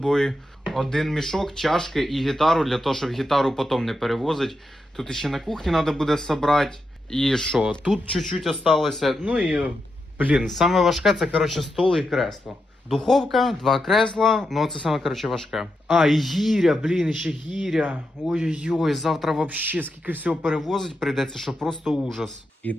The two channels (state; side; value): normal; both; correlation 0.86